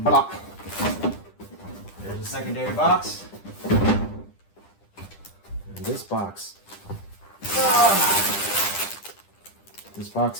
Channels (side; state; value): right; late; 10 ms